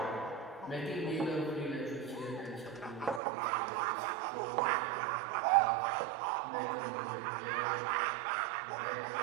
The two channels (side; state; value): left; drops out; at 3.2 s